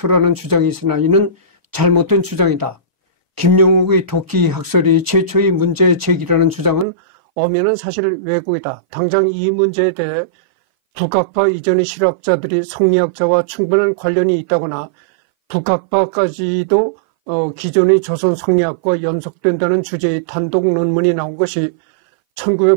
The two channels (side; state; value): left; drops out; at 6.9 s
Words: 주장이 있으나 이는 잘못된 주장이다. 김용욱의 도끼 학설이 최초의 문제 제기라는 주장은 엄연한 사실 왜곡이다. 당장 이 문제에 대해 북학파 이전의 실학자들이 성리학자와 충분한 관련이 있다거나 북학파까지도 기존의 조선 성리학과 연속된다는 주제의 단독 논문이 나온 것이